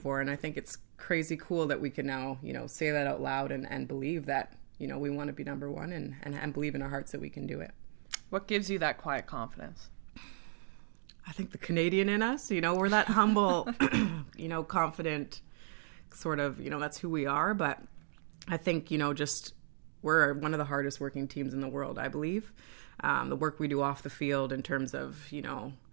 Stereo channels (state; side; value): silent; left; digital silence